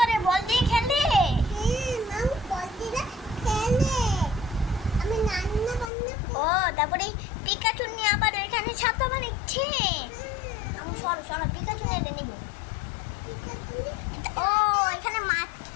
বল দিয়ে খেলে? হ্যাঁ, মাও বলদিরা খেলে। আমি রান্না বান্না ও তারপরে এই পিকাচু নিয়ে আবার এখানে ছাতা বানাচ্ছে। আমি সরো পিকাচু নিয়ে নিব। ও এখানে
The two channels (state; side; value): drops out; right; at 5.9 s